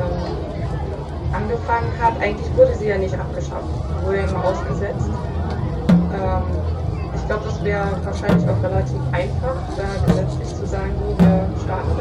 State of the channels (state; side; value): identical; both; correlation 1.00